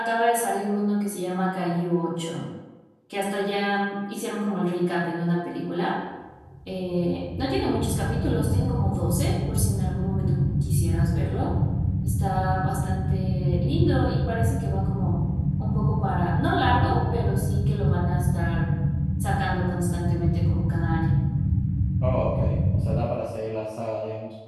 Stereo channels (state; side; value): identical; both; correlation 1.00